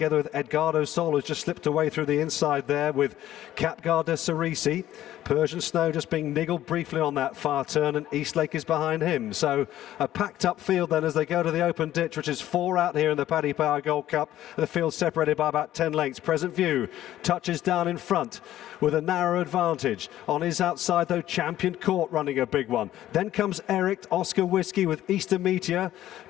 with Edgardo Sol, who's just slipped away through the inside there with Caid Du Berlais. Persian Snow just being niggled briefly on that far turn, and Eastlake is behind him. So a packed up field then as they go to the open ditch, which is 4 out here in the Paddy Power Gold Cup. The field separated by about 10 lengths. Present View touches down in front with a narrow advantage. On his outside though, Champion Court running a big one. Then comes Eric, Oscar Whiskey with Easter Meteor.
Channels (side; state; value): right; quieter; 13.2 dB